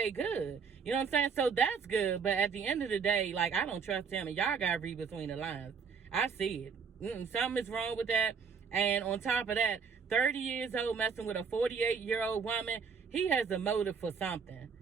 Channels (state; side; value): quieter; left; 5.9 dB